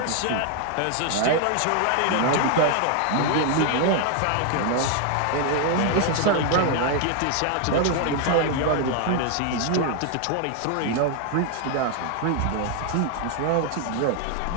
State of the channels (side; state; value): both; different; correlation 0.00